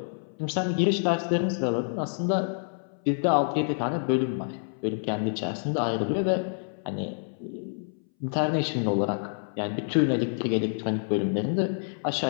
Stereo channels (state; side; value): silent; right; 60 dB below the other